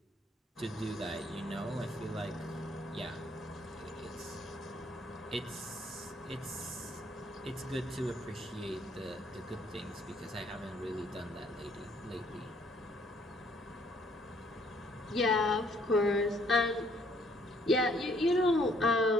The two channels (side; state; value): both; normal; correlation 0.64